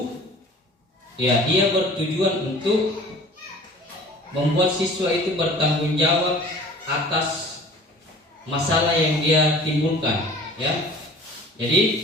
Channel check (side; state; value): both; normal; correlation 0.46